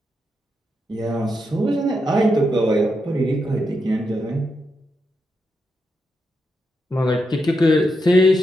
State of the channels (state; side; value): normal; both; correlation 0.84